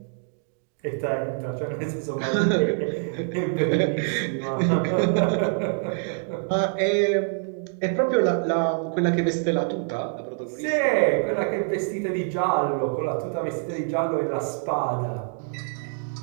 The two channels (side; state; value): left; silent; 61 dB below the other